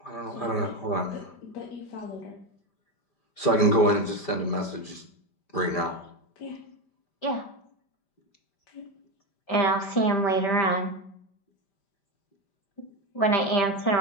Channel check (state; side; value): late; right; 5.1 ms